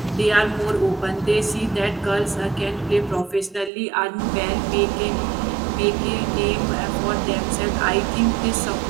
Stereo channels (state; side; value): drops out; left; at 3.7 s